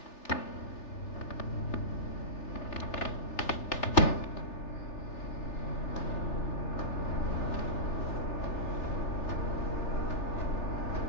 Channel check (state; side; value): late; right; 3.4 ms